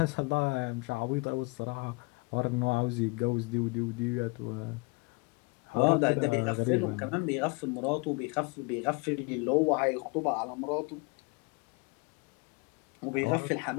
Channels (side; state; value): right; quieter; 28.9 dB